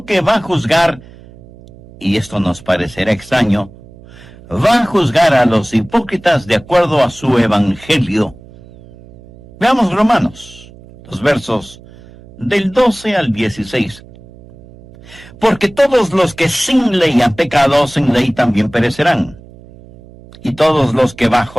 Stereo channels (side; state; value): right; noise; hum, 22 dB below the sound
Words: que va a juzgar, y esto nos parecerá extraño, va a juzgar a los hipócritas de acuerdo a su evangelio. Veamos Romanos, los versos del 12 al 16. Porque todos los que sin ley han pecado, sin ley también perecerán. Y todos los que